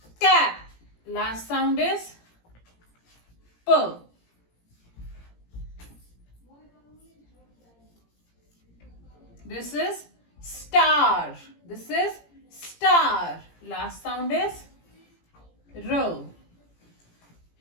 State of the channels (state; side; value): late; right; 17 ms